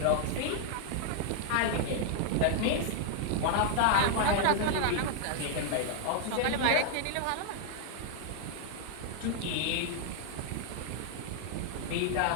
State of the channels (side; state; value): both; different; correlation 0.00